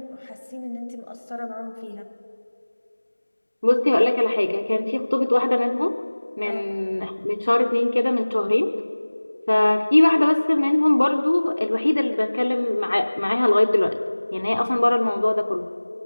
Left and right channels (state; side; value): inverted; both; correlation -1.00